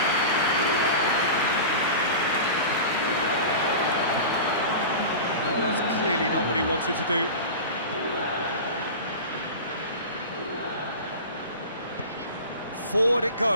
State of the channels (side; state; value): both; inverted; correlation -0.31